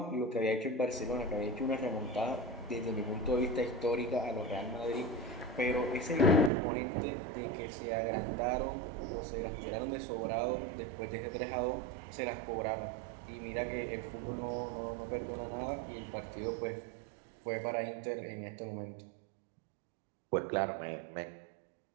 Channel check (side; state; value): left; drops out; at 6.5 s